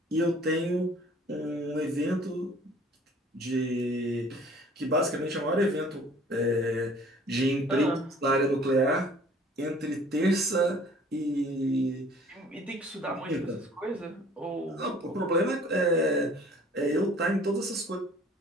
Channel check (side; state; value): both; normal; correlation 0.52